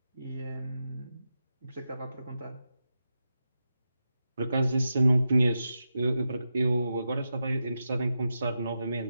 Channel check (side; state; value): both; inverted; correlation -0.89